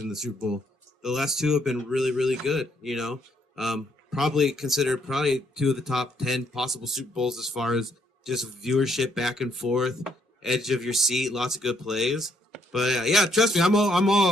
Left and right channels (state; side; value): normal; both; correlation 0.71